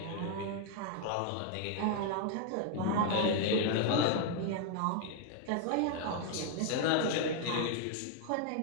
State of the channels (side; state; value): both; different; correlation 0.00